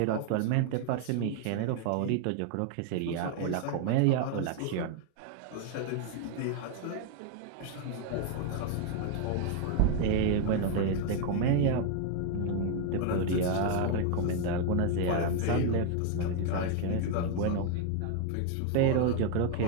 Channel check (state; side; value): different; both; correlation 0.00